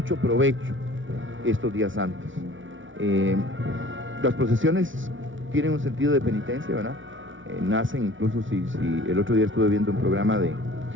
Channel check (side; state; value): left; late; 0.56 ms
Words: provecho estos días santos. Las procesiones tienen un sentido de penitencia, ¿verdad? Nacen incluso, si el otro día estuve viendo un programa